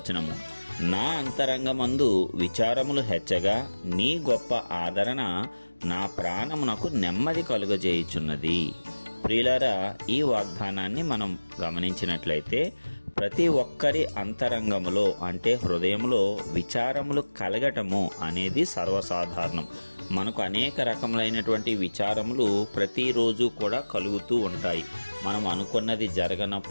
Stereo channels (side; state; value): both; inverted; correlation -1.00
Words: నా అంతరంగమందు విచారములు హెచ్చగా నీ గొప్ప ఆదరణ నా ప్రాణమునకు నెమ్మది కలుగజేయుచున్నది. ప్రియులారా, ఈ వాగ్దానాన్ని మనం గమనించినట్లయితే ప్రతి ఒక్కరి అంతరంగములో అంటే హృదయంలో విచారములు కలగటము అనేది సర్వసాధారణం. మనకు అనేక రకములైనటువంటి విచారములు ప్రతిరోజు కూడా కలుగుతూ ఉంటాయి. మనం అనుకున్నది